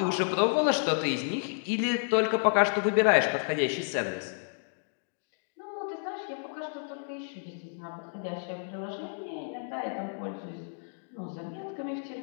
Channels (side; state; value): right; silent; digital silence